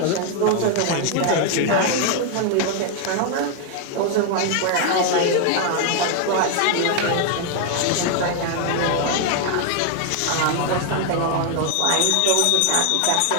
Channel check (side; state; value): both; different; correlation 0.00